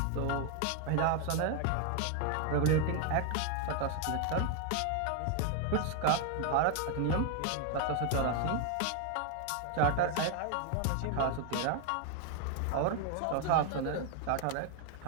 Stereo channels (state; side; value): different; both; correlation 0.01